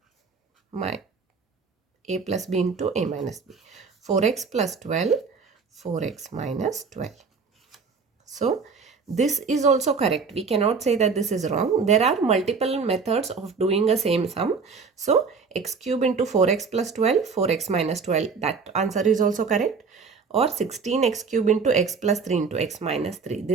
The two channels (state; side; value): quieter; left; 5.1 dB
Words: my a plus b into a minus b. 4x plus 12, 4x minus 12. So this is also correct. We cannot say that this is wrong. There are multiple methods of doing a same sum. So x cube into 4x plus 12, 4x minus 12, that answer is also correct. Or 16x cube into x plus 3 into x minus 3.